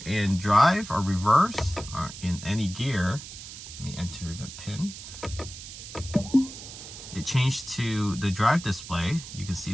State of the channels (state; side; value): noise; right; hiss, 12 dB below the sound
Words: in drive or reverse or in any gear, let me enter the pin. It changed to the drive display. You can see